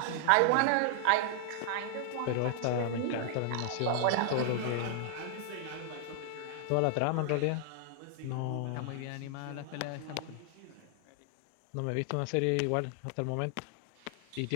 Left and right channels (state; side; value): different; both; correlation 0.00